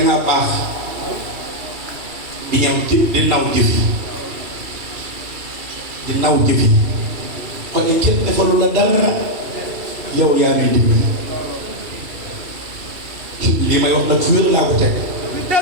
baax di ñëw di naw jëf yi di naw jëf yi kon kenn defalu la dara yow yaa ngi dimbali lii may wax nag fu wér laa ko teg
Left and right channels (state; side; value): late; left; 2.7 ms